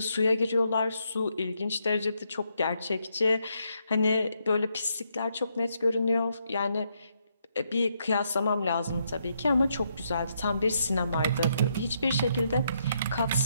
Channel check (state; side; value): inverted; both; correlation -0.77